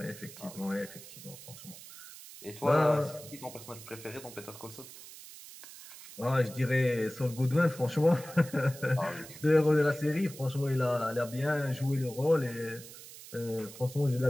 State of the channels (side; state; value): right; noise; hiss, 16 dB below the sound